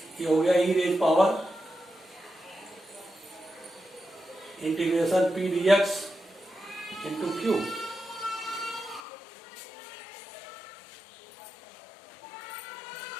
ये हो गया e raise power integration p dx into q.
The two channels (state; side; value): drops out; right; at 9.0 s